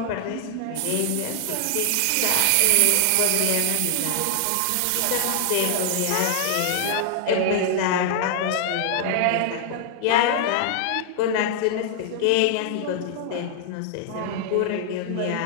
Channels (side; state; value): both; different; correlation 0.00